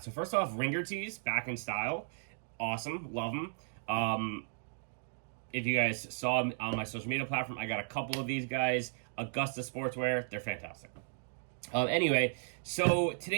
first off, Ringer tees, back in style. Awesome, love them. If you guys saw on my social media platform, I got a couple of these guys. Augusta Sportswear, they're fantastic. Anyway, so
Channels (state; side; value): silent; left; digital silence